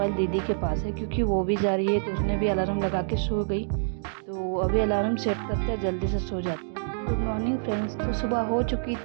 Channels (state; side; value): silent; left; digital silence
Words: दीदी के पास है क्योंकि वो भी जा रही है, तो उसने भी अलार्म लगा के सो गई। तो अभी अलार्म सेट करते हैं, जल्दी से सो जाते हैं। Good morning friends. तो सुबह हो चुकी